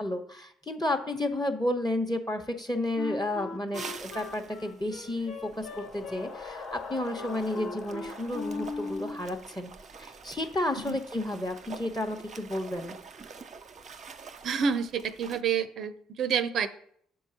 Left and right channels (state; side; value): normal; both; correlation 0.70